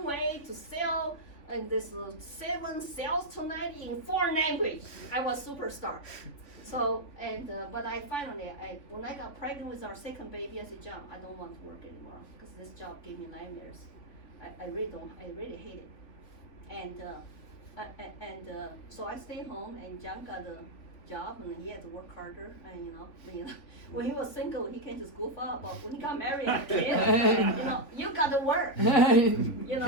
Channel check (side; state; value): right; late; 3.5 ms